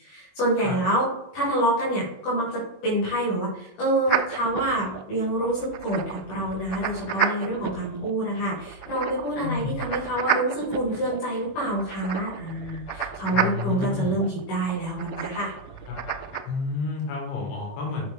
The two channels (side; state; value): right; late; 21 ms